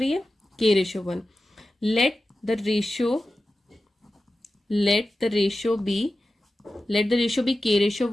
है, k ratio 1। Let the ratio be k ratio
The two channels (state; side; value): normal; both; correlation 0.94